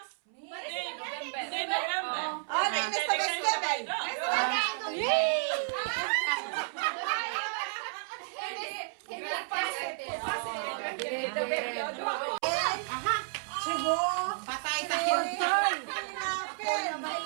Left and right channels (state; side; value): silent; left; 57 dB below the other